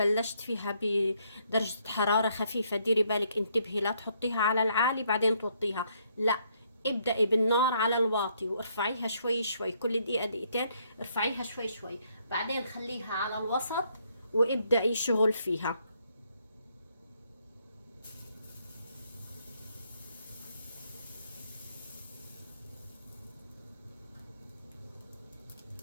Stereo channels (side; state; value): both; inverted; correlation -0.71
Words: فيها بدرجة حرارة خفيفة. ديري بالك انتبهي لا تحطيها على العالي بعدين توطيها، لا، ابدأي بالنار على الواطي وارفعيها شوي شوي، كل دقيقة دقيقتين ارفعيها شوي شوي، بعدين خليها على الوسط وابدأي شغل فيها.